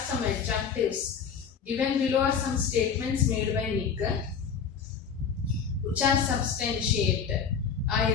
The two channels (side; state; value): right; quieter; 6.5 dB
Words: adjectives. Given below are some statements made by Nick which are substantiated. I